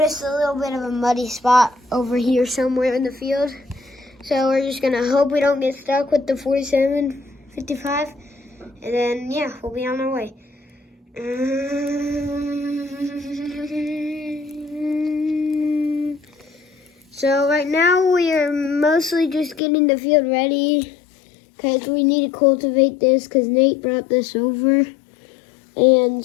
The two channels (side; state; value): right; drops out; at 19.6 s